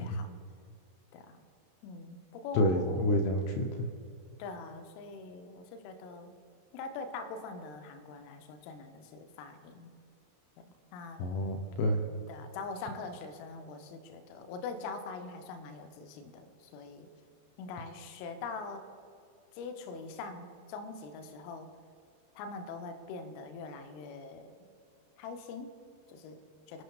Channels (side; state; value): right; late; 33 ms